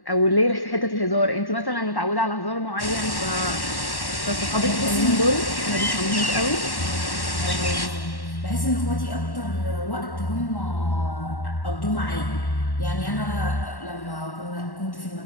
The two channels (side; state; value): right; late; 1.1 ms